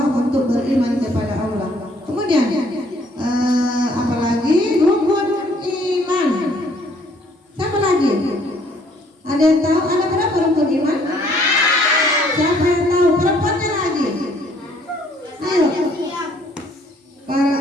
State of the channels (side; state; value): both; normal; correlation 0.63